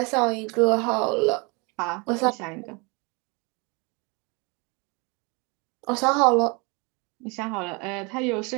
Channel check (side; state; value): left; quieter; 29.8 dB